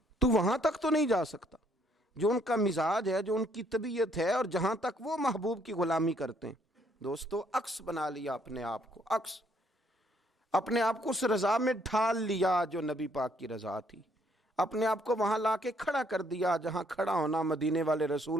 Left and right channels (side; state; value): both; normal; correlation 0.67